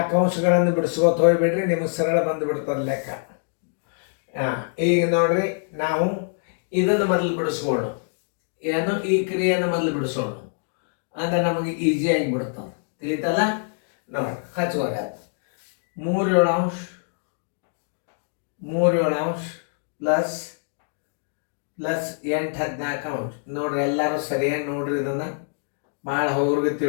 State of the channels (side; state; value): right; silent; digital silence